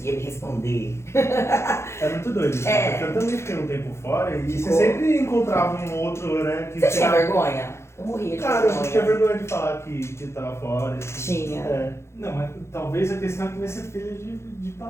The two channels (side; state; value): right; late; 0.13 ms